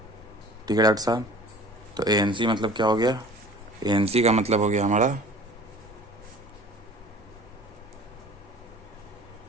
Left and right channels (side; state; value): both; normal; correlation 0.44